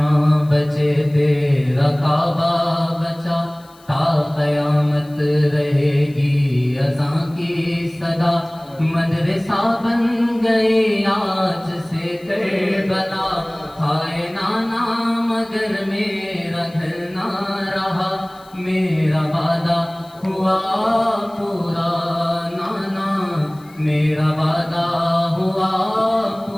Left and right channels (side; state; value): left; noise; hiss, 28 dB below the sound